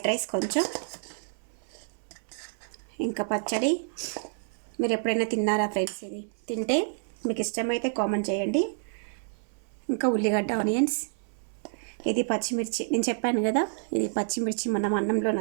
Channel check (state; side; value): silent; left; 59 dB below the other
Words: రైస్, కొంచెం ఇంకా పచ్చడి. మీరు ఎప్పుడైనా తిన్నారా ఫ్రెండ్స్? ఇది తింటే మీకు ఇష్టమైతే కామెంట్ చేయండి. ఇంకా ఉల్లిగడ్డ, ఆనియన్స్, ఇది పచ్చిమిర్చి. నేను చెప్పాను కదా, ఇది పచ్చిమిర్చి మనం అన్నంలో